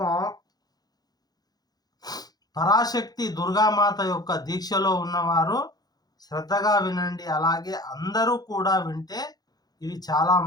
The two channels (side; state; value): right; late; 0.19 ms